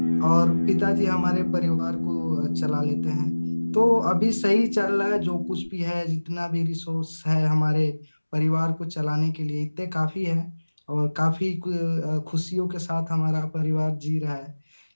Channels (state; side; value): inverted; both; correlation -1.00